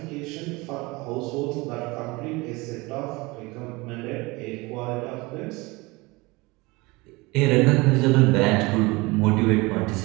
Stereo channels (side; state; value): left; quieter; 23.8 dB